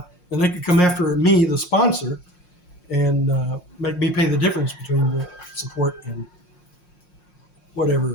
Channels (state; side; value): late; right; 5.6 ms